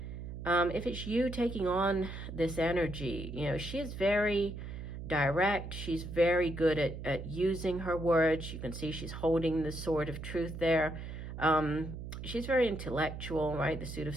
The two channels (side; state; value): right; noise; hum, 8 dB below the sound